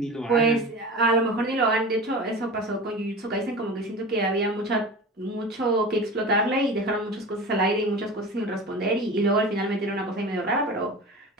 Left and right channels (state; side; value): normal; both; correlation 0.32